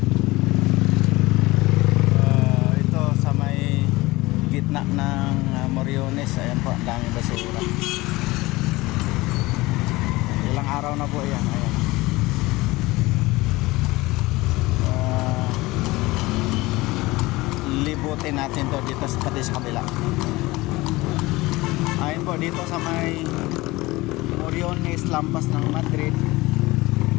Ito sa may gitna ng Moriones, ayan po, ang daming basura. Ilang araw na po yan, ayan. Libutin natin to dito pati sa kabila. Ayun po, dito sa may Moriones, lampas ng Madrid.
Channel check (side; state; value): right; quieter; 20.6 dB